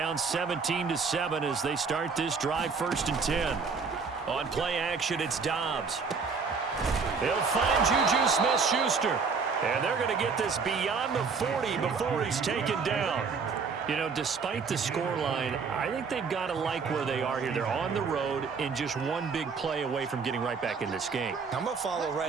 17-7 as they start this drive 1st and 10. On play action, it's Dobbs. He'll find Juju Smith-Schuster. And they're going to get this beyond the 40 before he's taken down. You know, despite the scoreline, I think they've got to like where they are here. They're on the road and just one big play away from getting right back in this game. I'm going to follow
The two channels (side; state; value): left; quieter; 5.2 dB